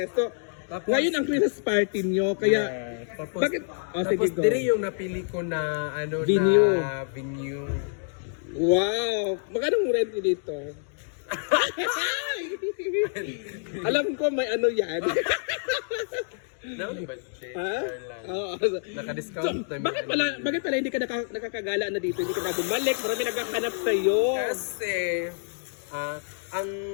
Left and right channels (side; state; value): right; silent; digital silence